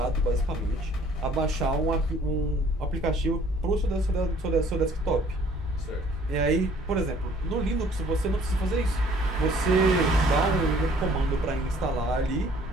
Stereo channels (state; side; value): normal; both; correlation 0.57